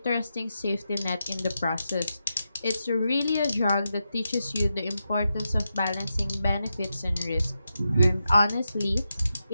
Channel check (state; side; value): inverted; both; correlation -0.88